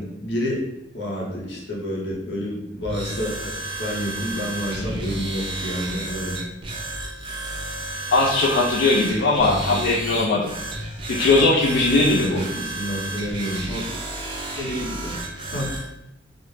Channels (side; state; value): both; normal; correlation 0.28